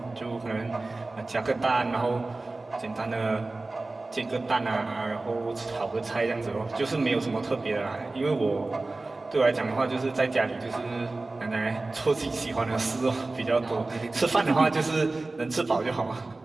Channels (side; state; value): left; quieter; 3.2 dB